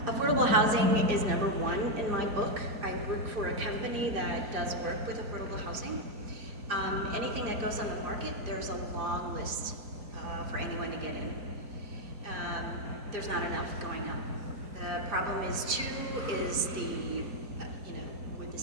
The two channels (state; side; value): late; left; 4.9 ms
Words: Affordable housing is number one in my book. I work for a company that does work with affordable housing. Anything that goes on the market, there's a long list for anyone to get in. There's not enough going up. The problem is too, is the, would the